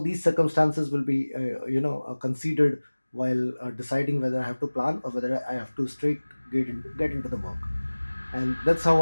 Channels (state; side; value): inverted; both; correlation -1.00